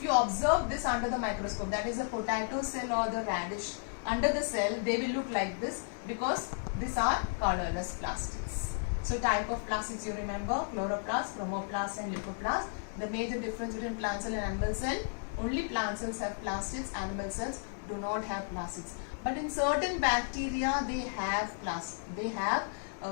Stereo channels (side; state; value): right; silent; digital silence